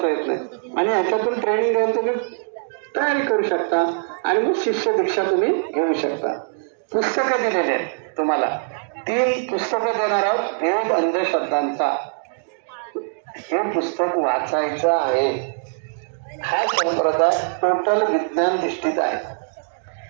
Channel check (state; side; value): silent; left; digital silence